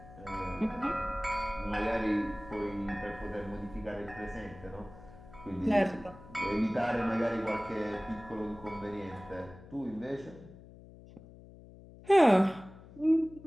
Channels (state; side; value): noise; left; hum, 19 dB below the sound